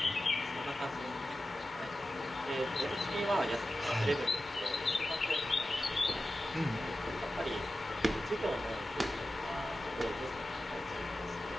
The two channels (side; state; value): both; normal; correlation 0.93